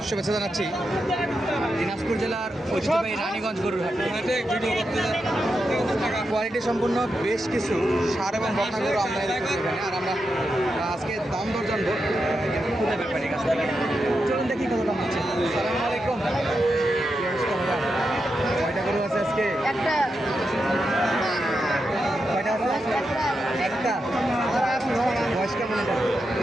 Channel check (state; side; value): normal; both; correlation 0.87